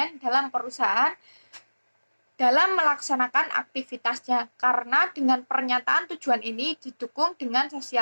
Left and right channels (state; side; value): inverted; both; correlation -1.00